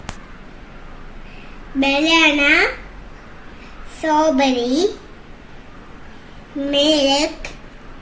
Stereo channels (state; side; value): identical; both; correlation 1.00